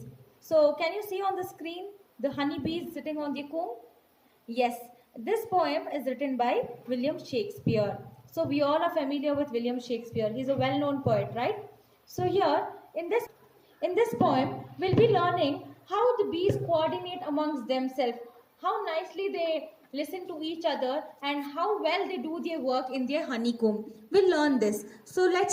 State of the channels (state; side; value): identical; both; correlation 1.00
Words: So can you see on the screen the honey bees sitting on the comb? Yes, this poem is written by William Shakespeare. So we all are familiar with William Shakespeare. He's a well-known poet, right? So here in this poem we'll be learning how the bees coordinate amongst themselves, how nicely they listen to each other and how well they do their work in their honeycomb. We'll learn this. So